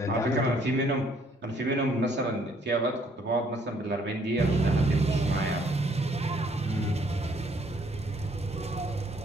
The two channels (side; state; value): both; normal; correlation 0.64